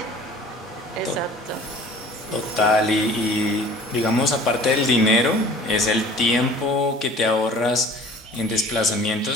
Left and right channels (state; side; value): normal; both; correlation 0.46